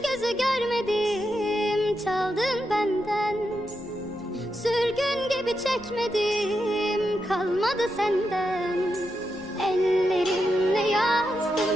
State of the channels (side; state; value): right; noise; rumble, 22 dB below the sound